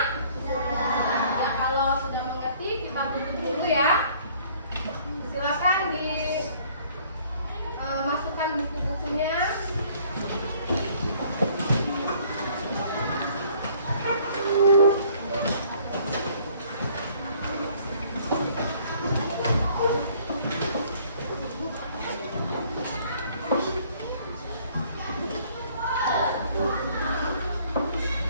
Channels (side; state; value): both; inverted; correlation -0.58